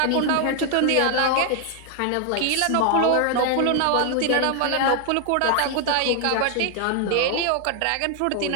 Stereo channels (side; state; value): both; different; correlation 0.00